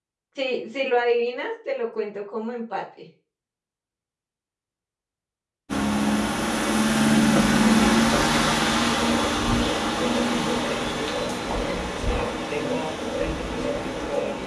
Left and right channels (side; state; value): both; identical; correlation 1.00